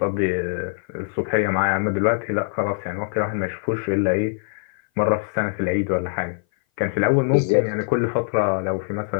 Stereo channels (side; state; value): right; silent; 58 dB below the other